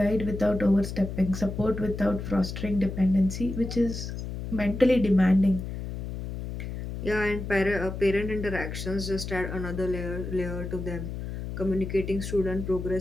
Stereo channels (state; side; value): noise; left; hum, 7 dB below the sound